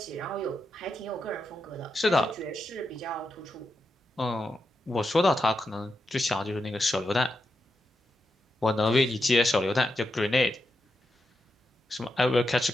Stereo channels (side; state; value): both; normal; correlation 0.86